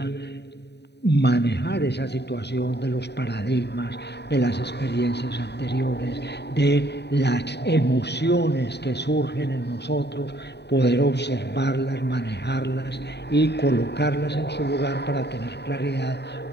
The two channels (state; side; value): late; right; 0.49 ms